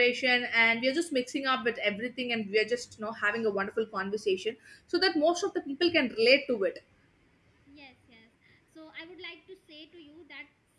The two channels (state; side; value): identical; both; correlation 1.00